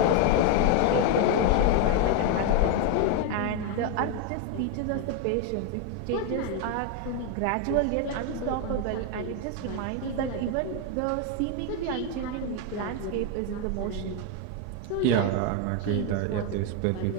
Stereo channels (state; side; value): different; both; correlation 0.01